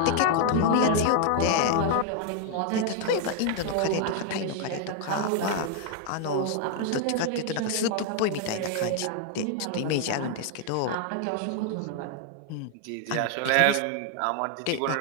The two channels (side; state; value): both; different; correlation 0.00